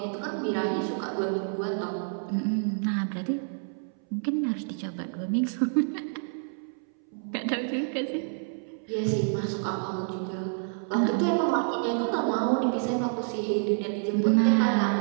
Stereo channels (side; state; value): left; silent; 59 dB below the other